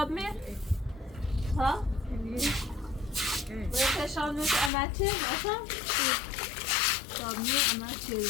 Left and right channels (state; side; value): drops out; right; at 4.7 s